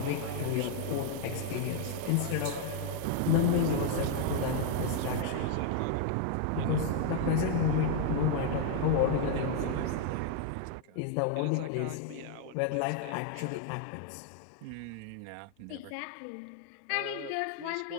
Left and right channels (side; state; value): both; different; correlation 0.00